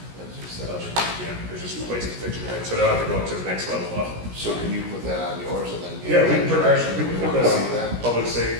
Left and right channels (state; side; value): late; left; 17 ms